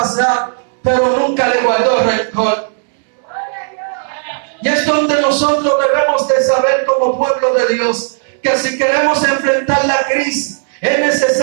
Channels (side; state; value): left; silent; digital silence